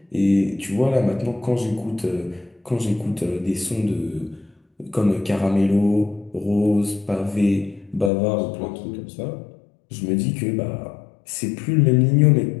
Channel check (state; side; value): drops out; right; at 8.1 s